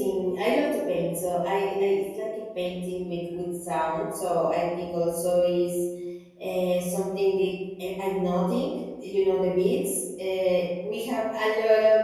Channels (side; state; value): both; identical; correlation 1.00